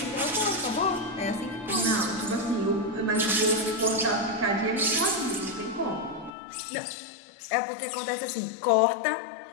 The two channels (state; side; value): drops out; right; at 6.4 s